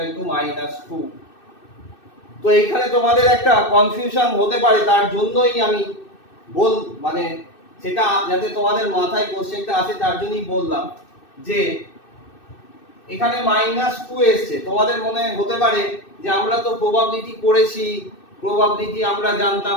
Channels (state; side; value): late; right; 2.6 ms